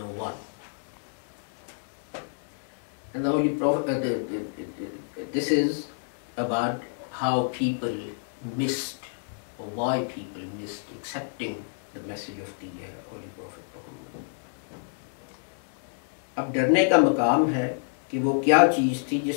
And the Holy Prophet, this is about how people missed, or why people missed accepting the message of the Holy Prophet Muhammad. अब डरने का मकाम है कि वो क्या चीज़ थी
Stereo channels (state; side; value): silent; right; digital silence